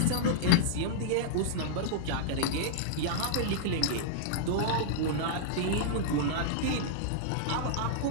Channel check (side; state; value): both; different; correlation -0.01